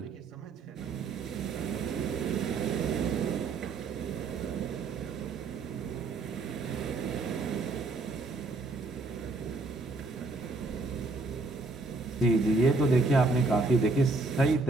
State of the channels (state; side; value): quieter; left; 3.5 dB